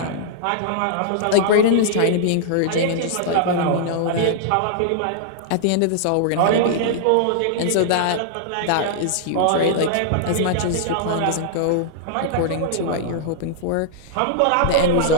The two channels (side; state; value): both; different; correlation -0.01